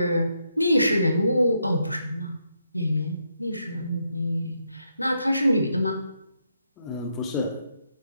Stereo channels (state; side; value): inverted; both; correlation -0.79